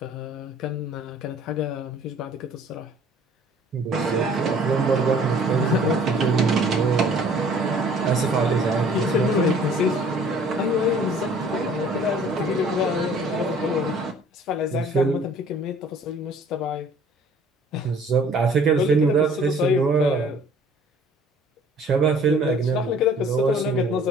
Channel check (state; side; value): normal; both; correlation 0.53